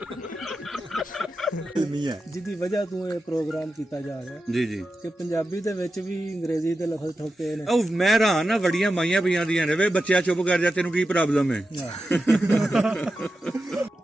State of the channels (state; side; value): normal; both; correlation 0.90